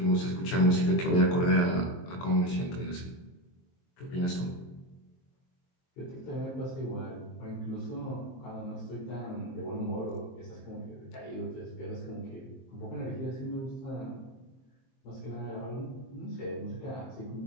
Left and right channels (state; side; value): late; right; 23 ms